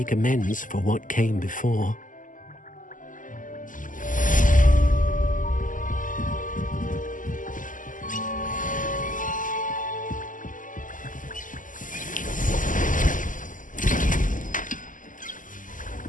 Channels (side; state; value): right; late; 0.38 ms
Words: amends for what came before.